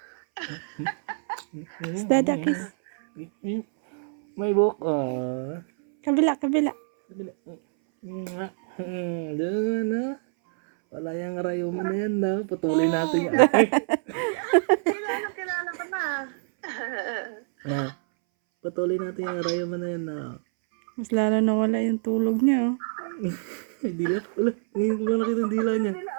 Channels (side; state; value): left; silent; 61 dB below the other